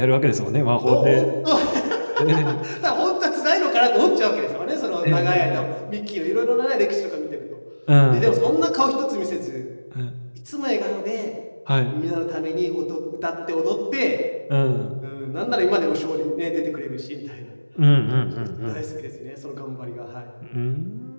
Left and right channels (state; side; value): inverted; both; correlation -1.00